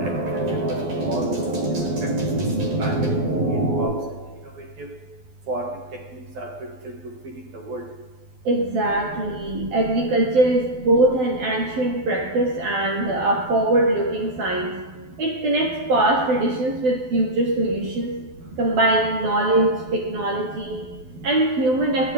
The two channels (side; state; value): left; late; 12 ms